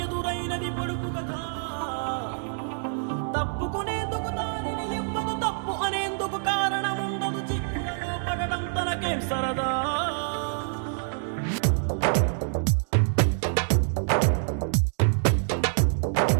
ఎదురైనది పొడుపు కథ? తప్పుకునేందుకు దారిని ఇవ్వదు, తప్పు అనేందుకు కారణం ఉండదు. చిక్కులలో పడడం తనకేం సరదా?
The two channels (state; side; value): silent; left; digital silence